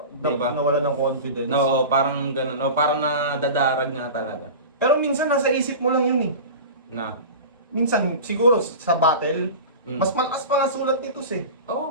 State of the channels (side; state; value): both; inverted; correlation -0.32